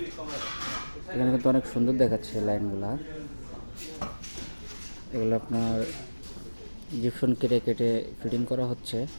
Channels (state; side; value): inverted; both; correlation -1.00